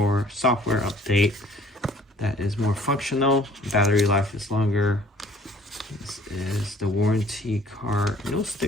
software update that is more functional. Battery life is longer. This is the warranty card. No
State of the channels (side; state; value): both; normal; correlation 0.55